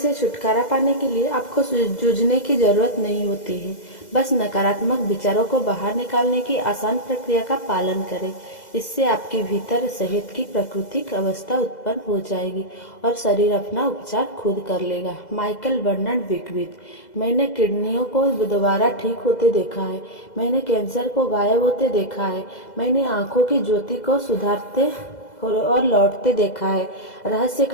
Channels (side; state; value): right; late; 2.0 ms